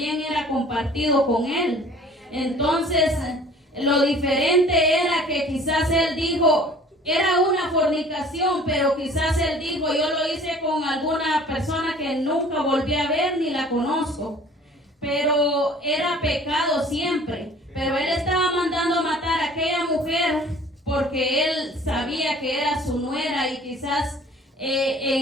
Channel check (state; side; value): normal; both; correlation 0.49